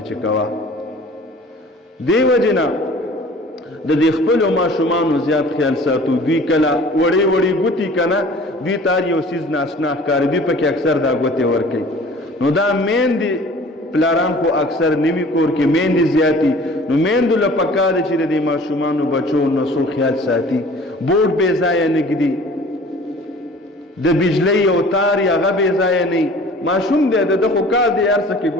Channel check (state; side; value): normal; both; correlation 0.47